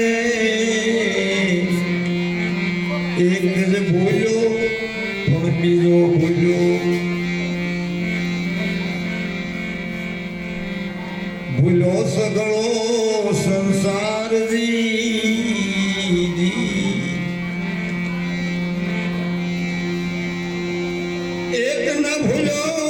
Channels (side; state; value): both; identical; correlation 1.00